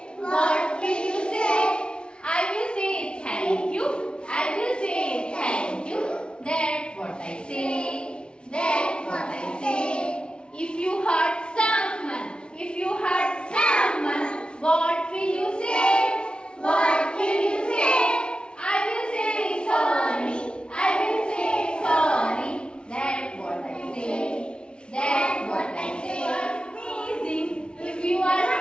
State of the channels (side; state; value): right; late; 0.056 ms